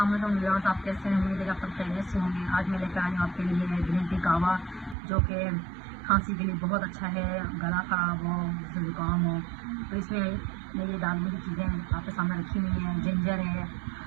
वालेकुम viewers, आप कैसे हैं? उम्मीद है आप सब खैरियत से होंगे। आज मैं लेकर आई हूँ आपके लिए ग्रीन टी कावा, जो कि खांसी के लिए बहुत अच्छा है। गला ख़राब हो, ज़ुकाम हो, तो इसमें मैं ये डालने की चीज़ें आपके सामने रखी हुई हैं। जिंजर है,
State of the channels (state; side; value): drops out; left; at 5.0 s